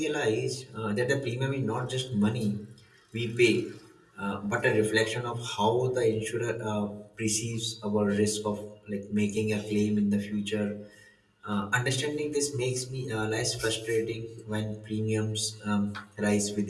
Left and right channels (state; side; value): identical; both; correlation 1.00